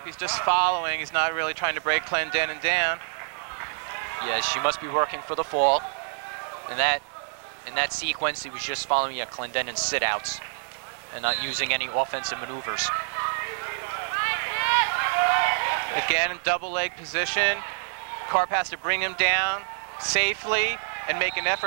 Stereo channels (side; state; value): left; silent; digital silence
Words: He's just following. He's not really trying to break Clendenin down. Yes, she must be working for the fall. In that sequence, he was just following Clendenin's sit-outs and not using any offensive maneuvers. Again, in double leg position. Karp has to bring him down safely and make an